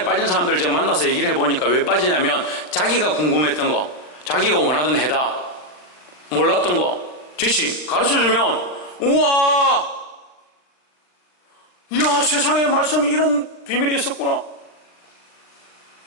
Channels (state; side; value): late; right; 40 ms